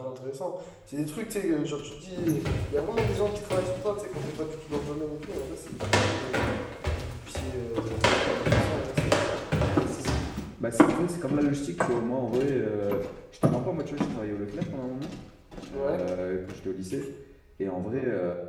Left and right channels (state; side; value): identical; both; correlation 1.00